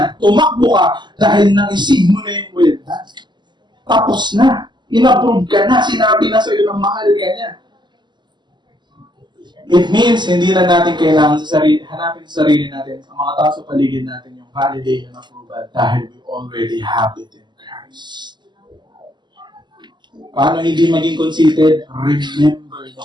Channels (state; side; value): late; left; 0.21 ms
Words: Tumakbo ka dahil naisig mo na yung well done. Tapos na. In-approve ka na. Sinabi na sa'yo ng mahal ka niya. It means, hindi na natin kailangan hanapin sa sarili natin, ang mga tao sa paligid natin, yung validation and approval dahil we already have it in Christ. Paano hindi maging conceited? Remember the